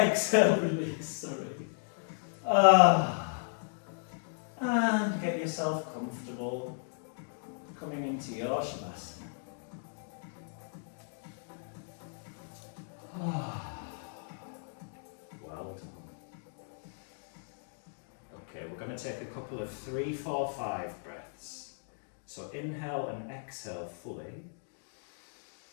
release, sorry. And get yourself comfortable. Coming into your Shavasana. Well done. Okay, we're going to take a couple of 3, 4, 5 breaths. So inhale and exhale fully.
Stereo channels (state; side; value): silent; right; digital silence